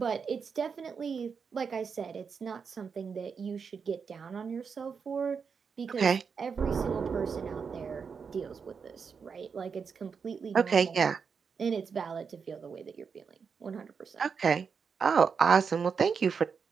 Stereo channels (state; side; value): quieter; left; 6.0 dB